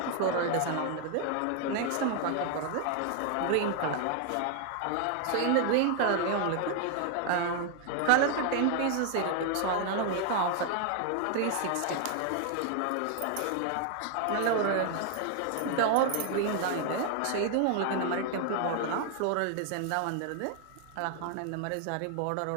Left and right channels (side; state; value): both; different; correlation 0.00